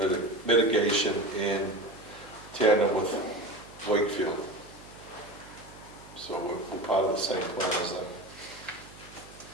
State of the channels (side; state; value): right; noise; hum, 20 dB below the sound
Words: mitigation in tandem with Wakefield. So we're part of the same plan as them.